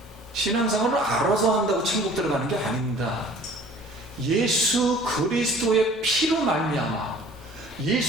신앙생활을 알아서 한다고 천국 들어가는 게 아닙니다. 예수 그리스도의 피로 말미암아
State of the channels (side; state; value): both; normal; correlation 0.50